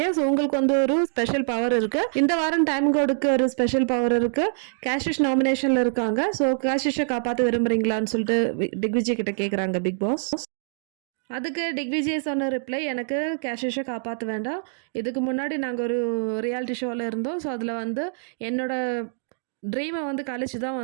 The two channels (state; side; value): silent; left; digital silence